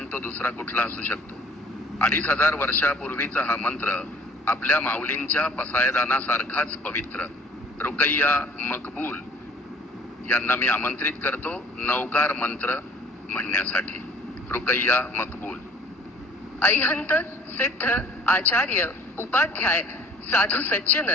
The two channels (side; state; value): both; normal; correlation 0.51